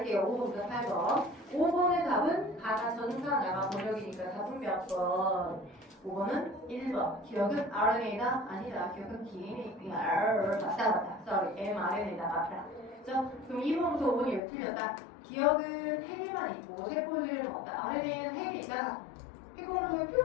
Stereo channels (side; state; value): right; drops out; at 14.4 s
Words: 5번부터 8번. 5번의 답은 가나 전사 나가 번역이니까 답은 몇 번? 5번은 1번. 기억은 RNA다? 아니다. 기억은 DNA. 맞다. sorry. mRNA다. 맞다. 자, 그럼 2번부터 5번이 왜 틀렸다? 기억은 헬만 있고 세포질은 없다. RNA는 헬이 있다. 헬을 통해